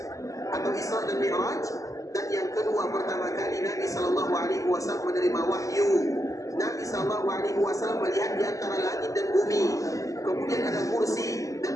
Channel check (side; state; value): right; late; 0.16 ms